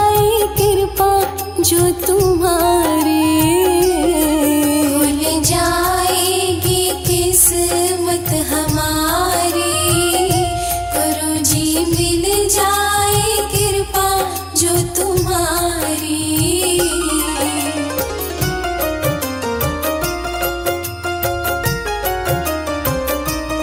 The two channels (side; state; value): both; identical; correlation 1.00